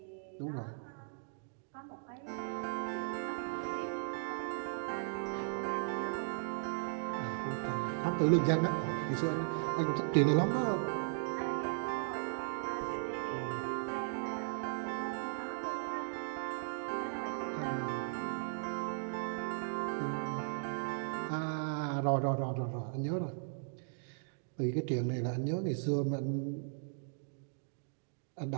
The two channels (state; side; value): silent; left; digital silence